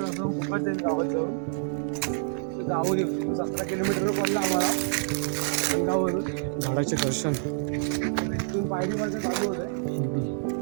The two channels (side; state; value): left; silent; digital silence